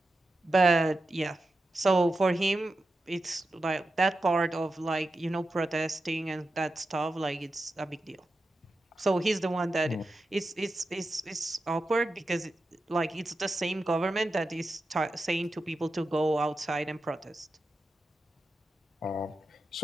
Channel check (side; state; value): both; normal; correlation 0.91